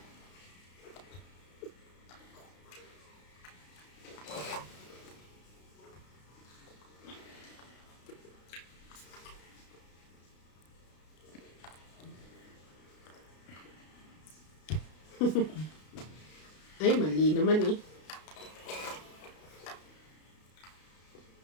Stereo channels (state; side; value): late; right; 33 ms